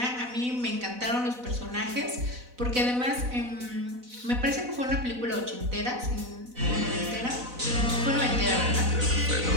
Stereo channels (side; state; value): left; late; 4.0 ms